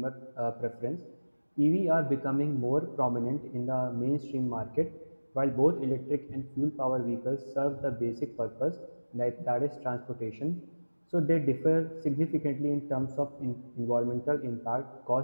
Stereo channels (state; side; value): inverted; both; correlation -1.00